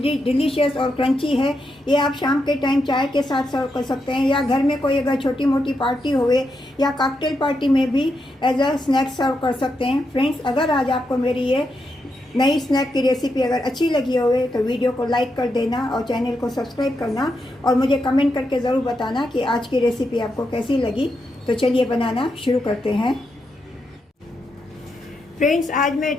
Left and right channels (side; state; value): both; normal; correlation 0.83